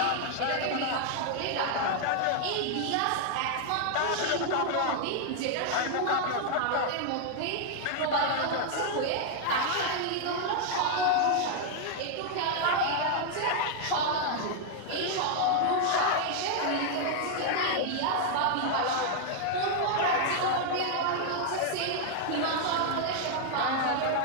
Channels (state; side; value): different; both; correlation 0.00